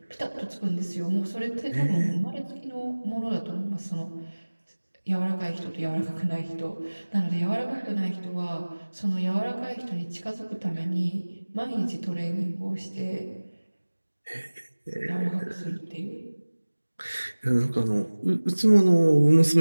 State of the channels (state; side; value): inverted; both; correlation -1.00